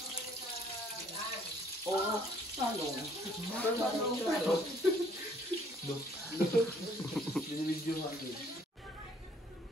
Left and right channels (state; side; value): normal; both; correlation 0.61